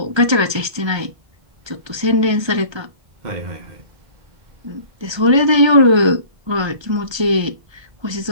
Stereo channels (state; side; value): late; left; 1.3 ms